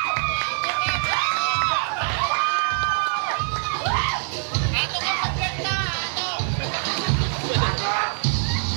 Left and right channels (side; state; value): left; silent; 57 dB below the other